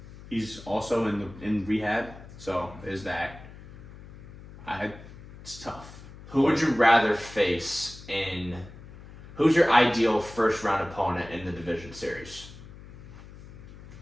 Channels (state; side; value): noise; left; hum, 17 dB below the sound